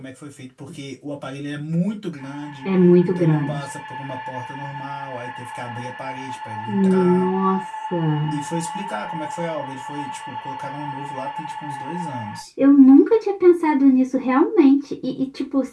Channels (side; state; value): both; identical; correlation 1.00